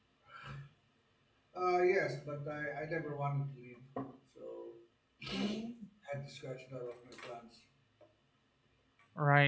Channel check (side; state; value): both; identical; correlation 1.00